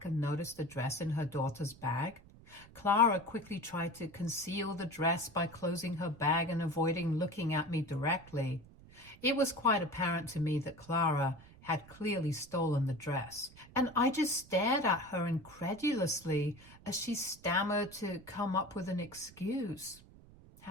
and noticed the dress in her daughter's bag. Clara quickly tried to conceal the dress by closing her bag and avoiding looking at me directly. It was quite apparent to me that Clara had clearly stolen the dress, and I just stared at her incredulously as she stammered to come up with an excuse.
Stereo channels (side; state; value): right; noise; rumble, 22 dB below the sound